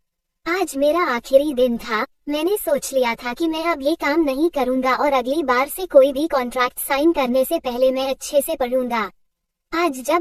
आज मेरा आखिरी दिन था। मैंने सोच लिया था कि मैं अब ये काम नहीं करूंगा और अगली बार से कोई भी कॉन्ट्रैक्ट साइन करने से पहले मैं अच्छे से पढ़ूंगा। आज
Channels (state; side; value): identical; both; correlation 1.00